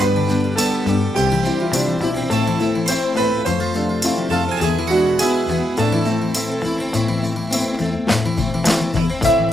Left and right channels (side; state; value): both; normal; correlation 0.83